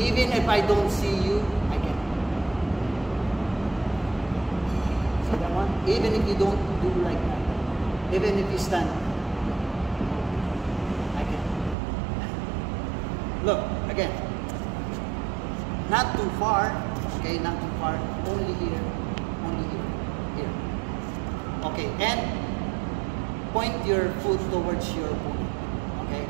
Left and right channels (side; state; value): left; drops out; at 11.8 s